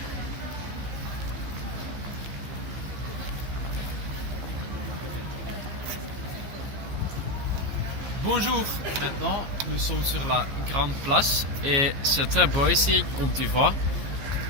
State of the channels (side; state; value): left; late; 15 ms